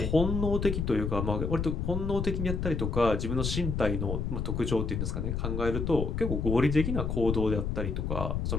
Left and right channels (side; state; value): left; noise; rumble, 1 dB below the sound